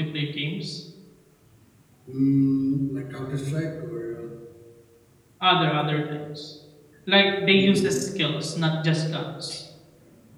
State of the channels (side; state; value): both; identical; correlation 1.00